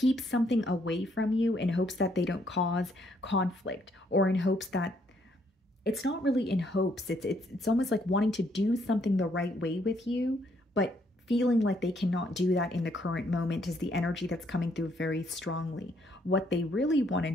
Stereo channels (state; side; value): normal; both; correlation 0.70